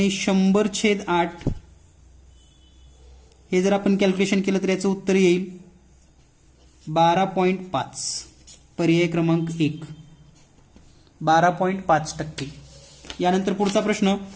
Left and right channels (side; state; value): both; identical; correlation 1.00